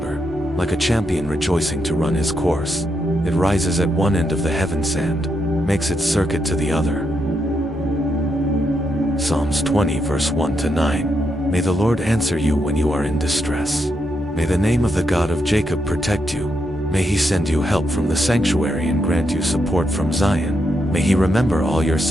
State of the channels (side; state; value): both; normal; correlation 0.81